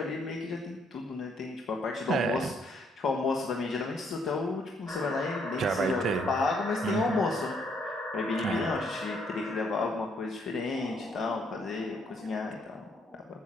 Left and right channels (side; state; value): both; normal; correlation 0.69